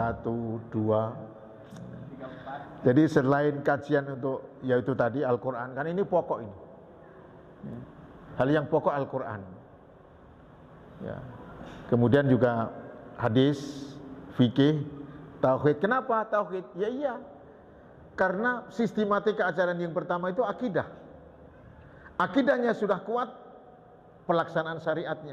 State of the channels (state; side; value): identical; both; correlation 1.00